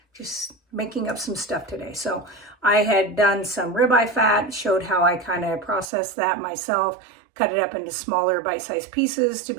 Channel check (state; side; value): drops out; left; at 5.9 s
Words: just making up some stuff today. So I had done some ribeye fat, showed how I kind of processed that myself, cut it up into smaller bite-sized pieces to